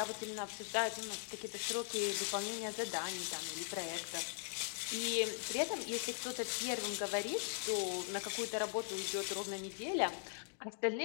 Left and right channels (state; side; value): silent; right; digital silence